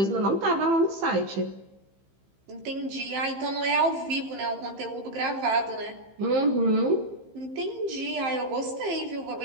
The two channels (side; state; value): left; late; 15 ms